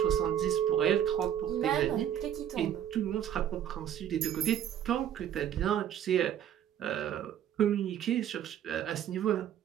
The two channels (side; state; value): left; quieter; 10.1 dB